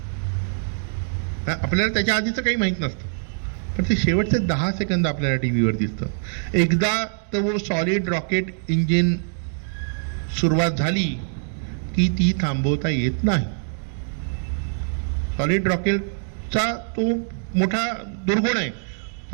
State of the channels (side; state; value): left; silent; digital silence